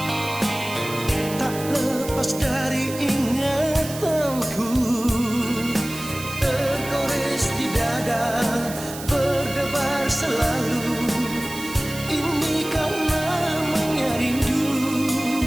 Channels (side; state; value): right; noise; hiss, 12 dB below the sound